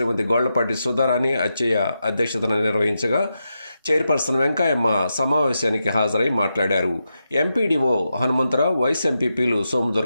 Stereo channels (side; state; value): both; inverted; correlation -0.87